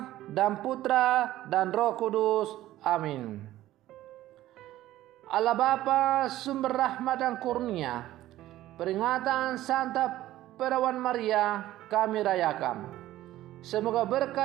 dan Putra dan Roh Kudus. Amin. Allah Bapa, sumber rahmat dan kurnia, peringatan Santa Perawan Maria kami rayakan. Semoga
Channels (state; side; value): quieter; left; 14.7 dB